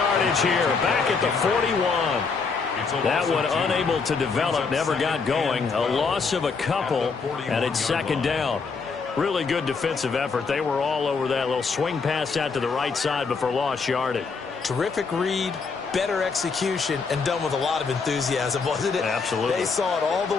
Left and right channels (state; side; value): quieter; right; 4.9 dB